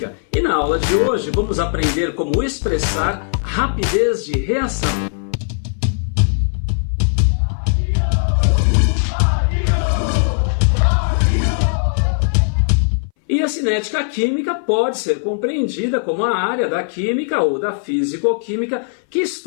e na aula de hoje vamos aprender como expressar rapidez de reação. E a cinética química pode ser compreendida como a área da química ou da físico-química que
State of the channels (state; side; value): silent; right; 63 dB below the other